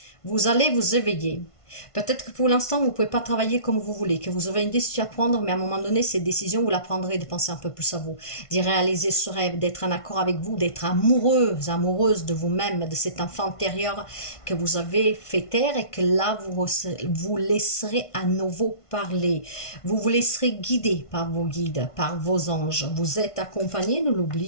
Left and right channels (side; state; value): right; late; 1.5 ms